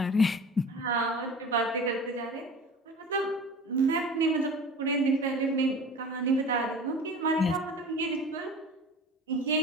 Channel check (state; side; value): normal; both; correlation 0.39